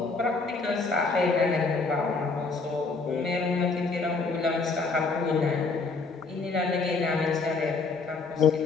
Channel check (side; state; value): right; quieter; 4.1 dB